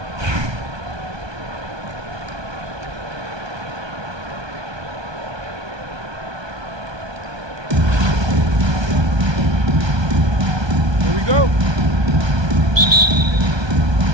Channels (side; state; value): left; late; 1.2 ms